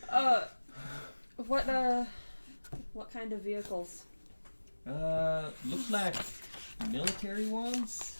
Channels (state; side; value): inverted; both; correlation -1.00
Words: What kind of vehicles? Looks like military ones.